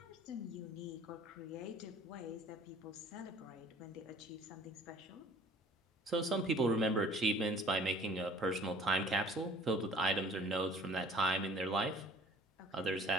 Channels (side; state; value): both; normal; correlation 0.50